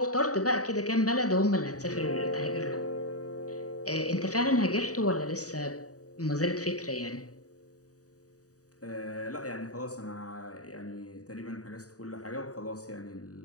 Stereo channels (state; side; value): late; right; 0.66 ms